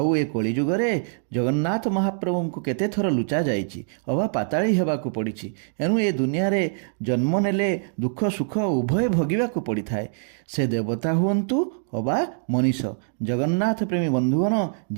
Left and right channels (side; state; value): left; silent; 62 dB below the other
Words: ଏ କଳିଯୁଗରେ ଜଗନ୍ନାଥ ମହାପ୍ରଭୁଙ୍କୁ କେତେ ଥର ଲୁଚା ଯାଇଛି, ଅବା ପାତାଳି ହେବାକୁ ପଡ଼ିଛି। ଏଣୁ ଏ ଦୁନିଆରେ ଜନ୍ମ ନେଲେ ଦୁଃଖ ସୁଖ ଉଭୟ ଭୋଗିବାକୁ ପଡ଼ିଥାଏ, ସେ ଦେବତା ହୁଅନ୍ତୁ ଅବା ମଣିଷ। ଜଗନ୍ନାଥ ପ୍ରେମୀ ବନ୍ଧୁଗଣ,